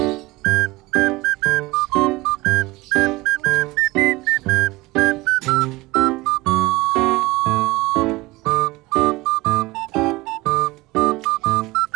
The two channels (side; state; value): left; quieter; 21.1 dB